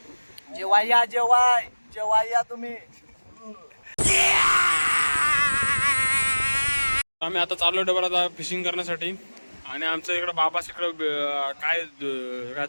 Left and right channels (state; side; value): inverted; both; correlation -1.00